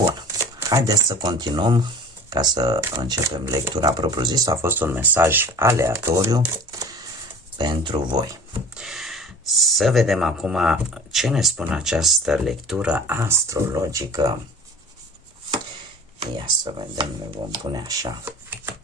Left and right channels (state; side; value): normal; both; correlation 0.42